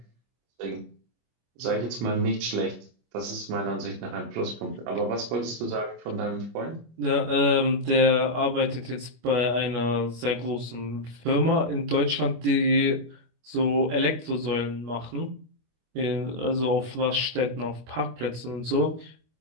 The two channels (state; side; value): late; left; 25 ms